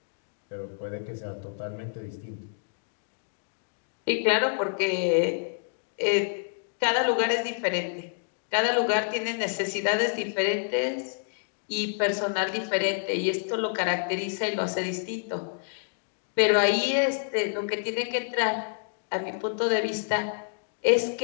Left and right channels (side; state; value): right; silent; digital silence